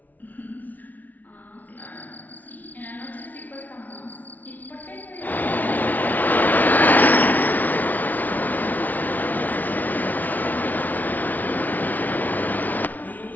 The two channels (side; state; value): right; late; 0.080 ms